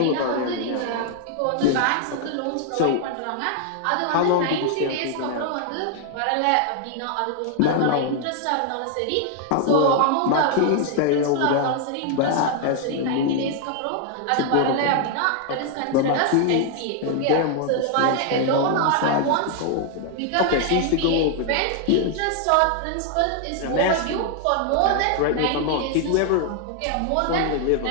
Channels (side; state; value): both; different; correlation 0.00